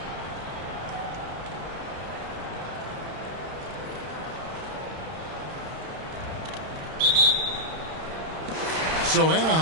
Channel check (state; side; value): late; left; 31 ms